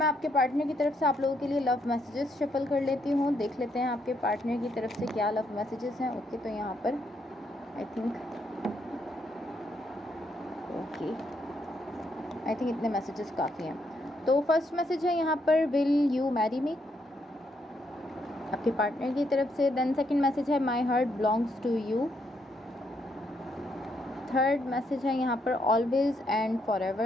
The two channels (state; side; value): normal; both; correlation 0.75